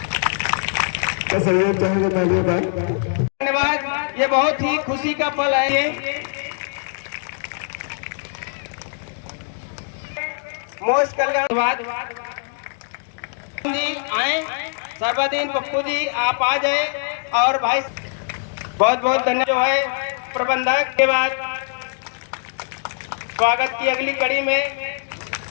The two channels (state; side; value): silent; right; digital silence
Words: धन्यवाद, ये बहुत ही खुशी का पल है। ये मोस्ट कल्याणवाद जी आए, सर्वदीन पप्पू जी आप आ जाए और भाई बहुत बहुत धन्यवाद जो है प्रबंधक के बाद स्वागत की अगली कड़ी में